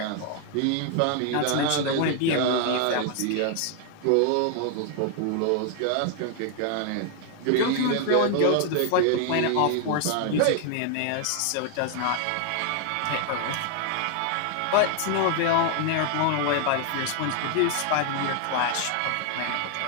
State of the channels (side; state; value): both; different; correlation 0.00